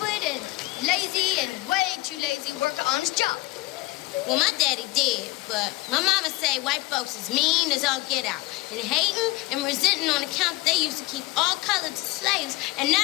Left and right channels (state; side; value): quieter; right; 21.0 dB